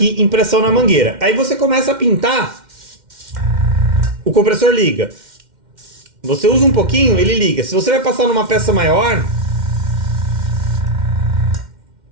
em pressão na mangueira. Aí você começa a pintar, o compressor liga. Você usa um pouquinho, ele liga. Se você vai passar numa peça maior,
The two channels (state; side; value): late; left; 2.1 ms